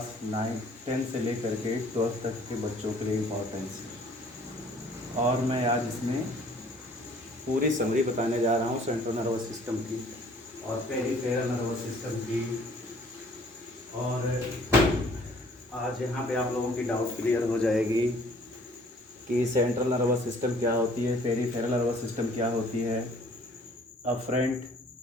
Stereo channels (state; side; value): normal; both; correlation 0.56